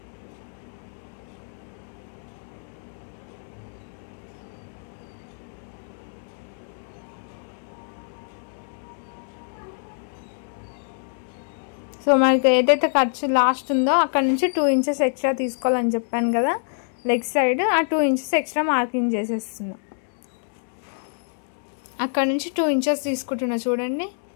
సో మనకి ఏదైతే ఖర్చు లాస్ట్ ఉందో అక్కడ నుంచి 2 ఇంచెస్ ఎక్స్ట్రా తీసుకోవాలని చెప్పాను కదా, లెగ్ సైడ్ ఆ 2 ఇంచెస్ ఎక్స్ట్రా మార్కింగ్ చేసేస్తున్నాం. అక్కడ నుంచి 2 ఇంచెస్ తీసుకుంటున్నా చూడండి.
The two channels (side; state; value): right; silent; 61 dB below the other